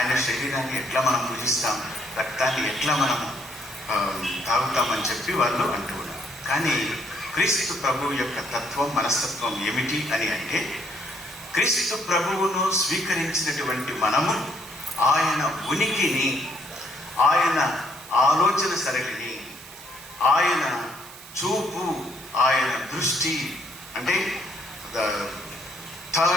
శరీరాన్ని ఎట్లా మనం పూజిస్తాం, రక్తాన్ని ఎట్లా మనం తాగుతామని చెప్పి వాళ్ళు అంటూ ఉన్నారు. కానీ క్రీస్తు ప్రభువు యొక్క తత్వం, మనస్తత్వం ఏమిటి అని అంటే, క్రీస్తు ప్రభువును స్వీకరించినటువంటి మనము ఆయన ఉనికిని, ఆయన ఆలోచన సరళిని, ఆయన చూపు, ఆయన దృష్టి, అంటే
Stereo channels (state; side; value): noise; right; hiss, 17 dB below the sound